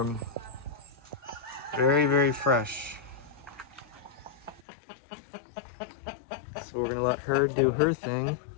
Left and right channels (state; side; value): drops out; right; at 4.7 s